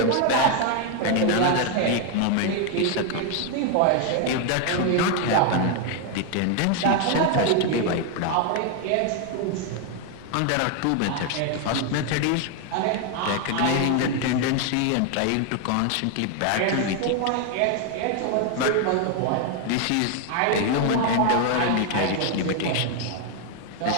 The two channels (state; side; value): different; both; correlation 0.01